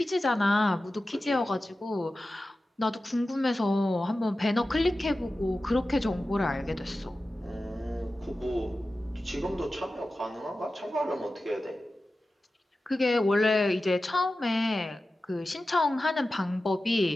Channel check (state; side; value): normal; both; correlation 0.94